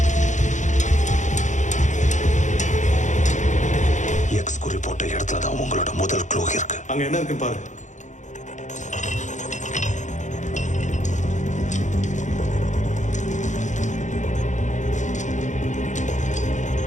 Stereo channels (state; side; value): late; right; 0.35 ms